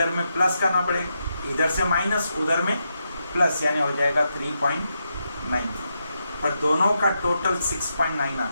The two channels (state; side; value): inverted; both; correlation -0.84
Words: में प्लस करना पड़ेगा, इधर से माइनस उधर में प्लस, यानी हो जाएगा 3.95, पर दोनों का टोटल 6.9